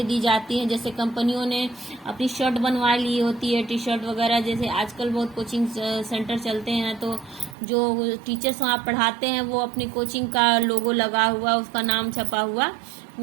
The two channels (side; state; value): left; drops out; at 7.6 s